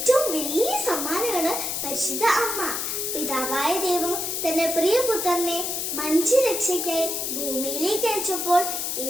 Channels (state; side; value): noise; left; hiss, 2 dB below the sound